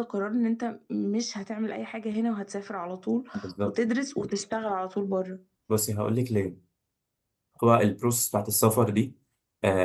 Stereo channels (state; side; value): identical; both; correlation 1.00